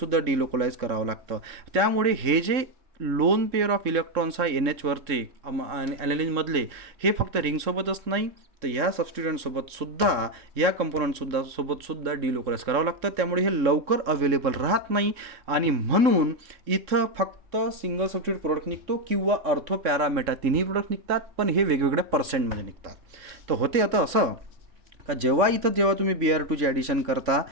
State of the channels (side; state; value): left; late; 3.7 ms